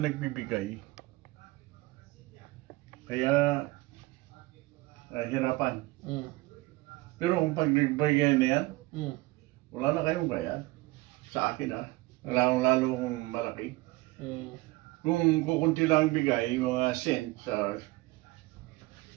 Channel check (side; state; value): left; quieter; 21.0 dB